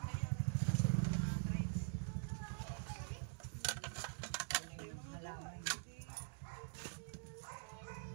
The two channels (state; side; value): silent; left; digital silence